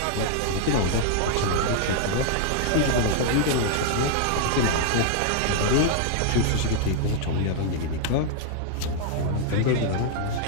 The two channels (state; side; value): different; both; correlation -0.01